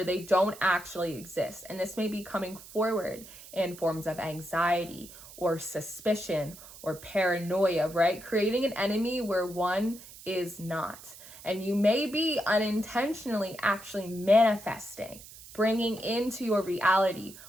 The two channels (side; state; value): right; noise; hiss, 17 dB below the sound